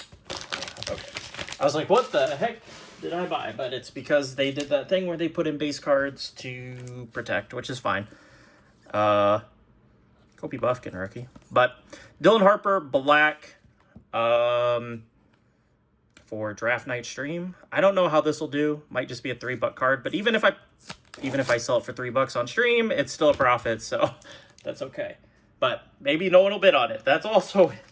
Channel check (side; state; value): both; identical; correlation 1.00